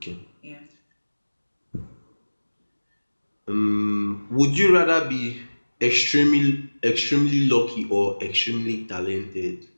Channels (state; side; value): inverted; both; correlation -1.00